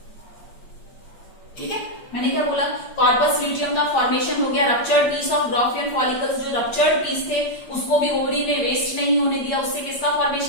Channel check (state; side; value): late; right; 8.7 ms